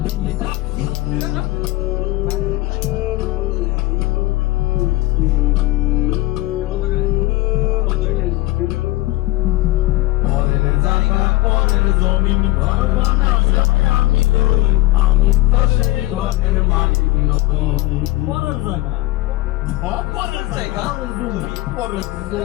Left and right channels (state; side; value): quieter; right; 18.9 dB